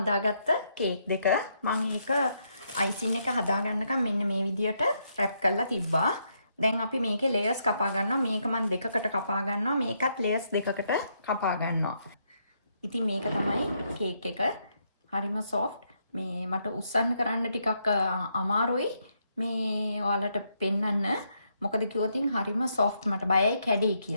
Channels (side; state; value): both; inverted; correlation -0.77